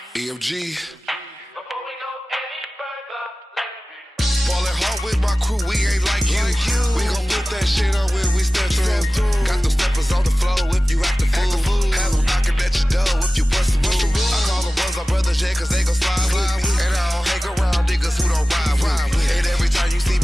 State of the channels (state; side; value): normal; both; correlation 0.96